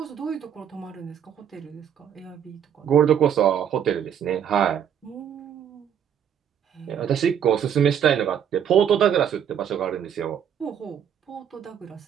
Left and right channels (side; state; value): left; quieter; 8.8 dB